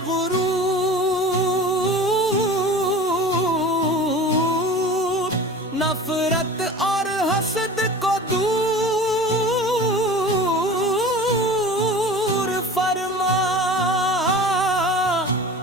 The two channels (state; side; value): normal; both; correlation 0.38